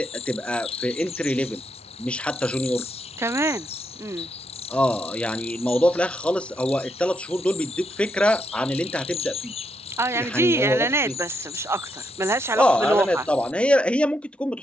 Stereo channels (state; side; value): normal; both; correlation 0.79